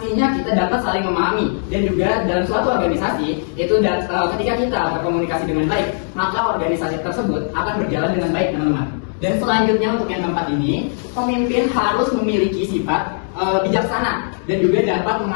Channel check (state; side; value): silent; right; digital silence